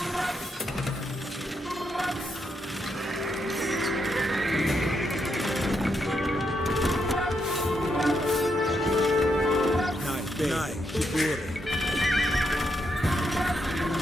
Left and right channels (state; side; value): normal; both; correlation 0.80